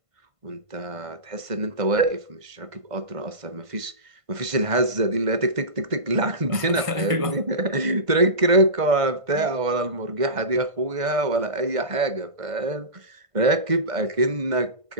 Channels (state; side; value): late; left; 1.5 ms